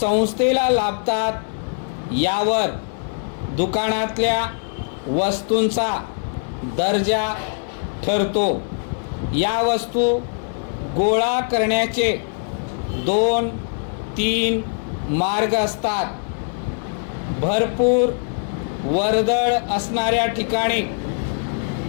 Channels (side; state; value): right; silent; digital silence